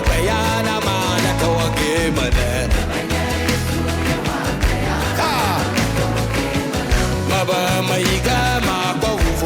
bayana malaka wake mala. Maba maiga makwa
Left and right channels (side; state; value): both; identical; correlation 1.00